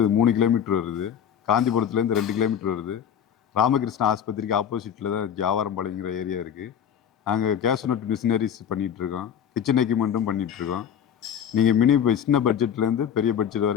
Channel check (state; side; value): quieter; right; 8.7 dB